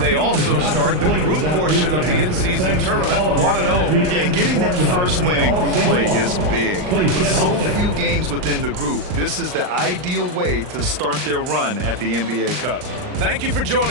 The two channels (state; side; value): late; left; 39 ms